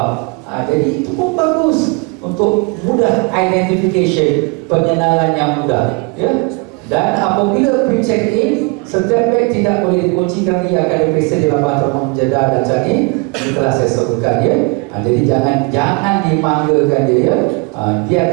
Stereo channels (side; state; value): left; quieter; 30.0 dB